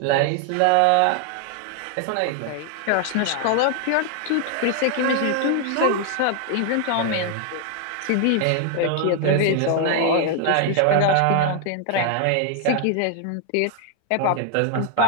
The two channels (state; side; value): different; both; correlation 0.00